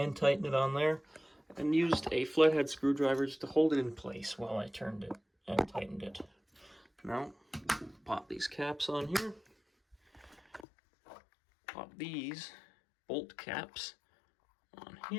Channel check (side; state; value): right; drops out; at 10.7 s